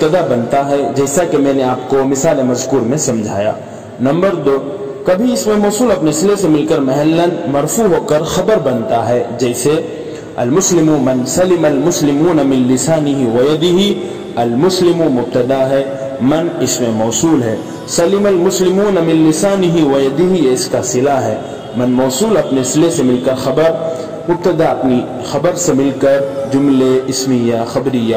بنتا ہے، جیسا کہ میں نے آپ کو مثال مذکور میں سمجھایا۔ نمبر 2 کبھی اسم موصول اپنے صلے سے مل کر محلا مرفوع ہو کر خبر بنتا ہے، جیسے المسلم من سلم المسلمون من لسانه ويده۔ المسلم مبتدا ہے، من اسم موصول ہے، سلم المسلمون من لسانه ويده یہ اس کا صلہ ہے۔ من موصول اپنے صلے سے مل کر خبر، مبتدا اپنی خبر سے مل کر جملے اسمیہ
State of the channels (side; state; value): both; identical; correlation 1.00